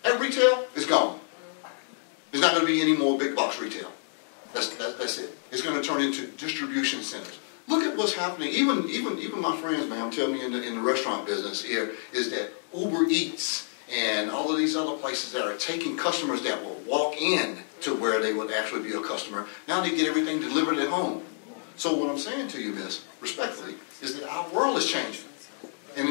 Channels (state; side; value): silent; right; digital silence